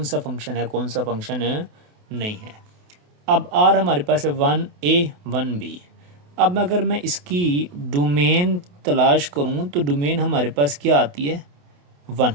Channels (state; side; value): late; left; 28 ms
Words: सा फंक्शन है कौन सा फंक्शन नहीं है। अब आर हमारे पास है 1 ए 1 बी। अब अगर मैं इसकी डोमेन तलाश करूं तो डोमेन हमारे पास क्या आती है, 1।